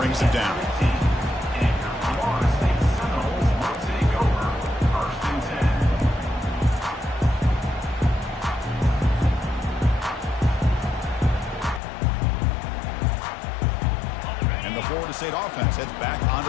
him down. Florida State offense heads back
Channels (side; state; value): right; drops out; at 11.8 s